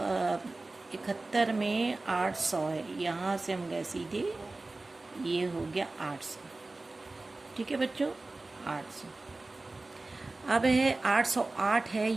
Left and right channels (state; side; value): quieter; left; 3.2 dB